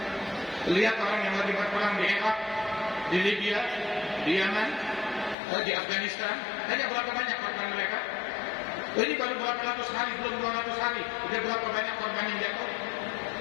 Lihat orang yang lagi berperang di Irak, di Libya, di Yaman, di Afghanistan. Tanya berapa banyak korban mereka? Ini baru berapa ratus hari, belum 200 hari. Udah berapa banyak korban yang jatuh?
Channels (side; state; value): right; drops out; at 5.4 s